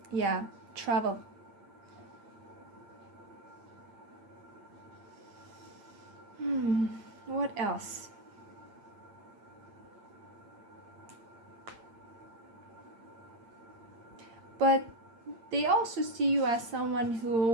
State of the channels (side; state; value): left; late; 8.7 ms